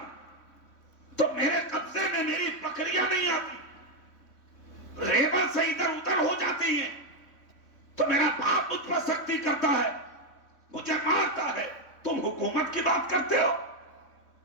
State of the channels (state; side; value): late; right; 3.6 ms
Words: تو میرے قبضے میں میری بکریاں نہیں آتی، ریبر سے ادھر ادھر ہو جاتی ہیں تو میرا باپ مجھ پر سختی کرتا ہے، مجھے مارتا ہے. تم حکومت کی بات کرتے ہو؟